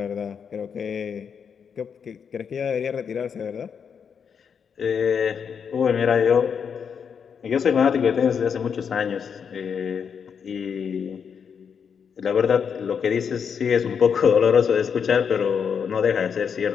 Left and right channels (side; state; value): right; quieter; 6.9 dB